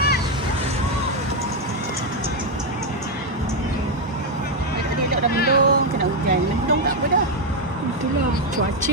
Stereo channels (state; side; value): normal; both; correlation 0.03